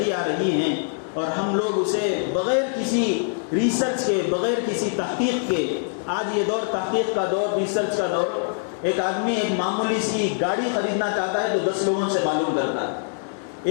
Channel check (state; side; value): silent; right; digital silence